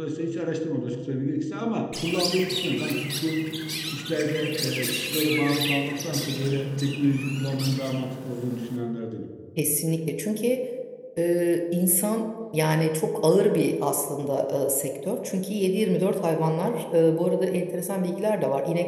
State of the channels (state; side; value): identical; both; correlation 1.00